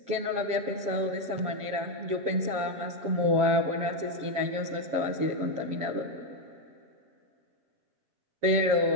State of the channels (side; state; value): left; late; 7.4 ms